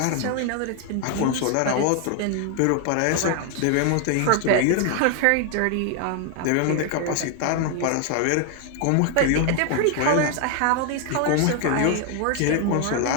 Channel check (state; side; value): different; both; correlation 0.01